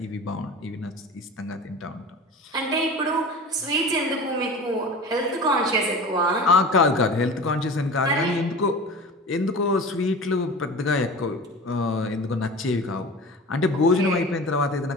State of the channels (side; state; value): both; normal; correlation 0.35